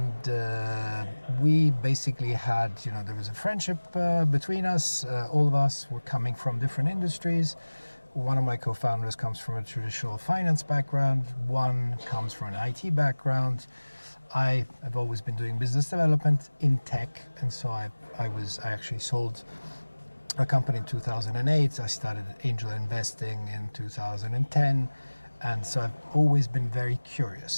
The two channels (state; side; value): inverted; both; correlation -1.00